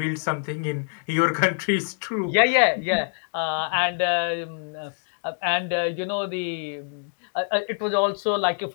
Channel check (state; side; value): silent; right; digital silence